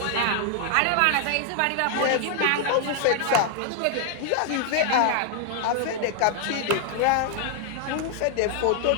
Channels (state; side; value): different; both; correlation 0.00